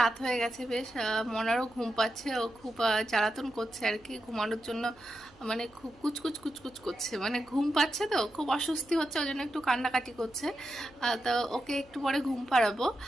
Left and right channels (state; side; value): noise; right; hum, 27 dB below the sound